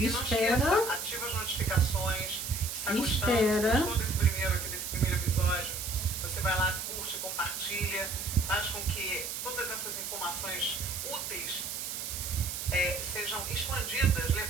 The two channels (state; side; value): noise; right; hiss, 5 dB below the sound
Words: não esqueça, ativa as notificações. Se está gostou desse primeiro episódio, você vai lá, curte, compartilha, faz com que todas essas informações úteis sejam expandidas,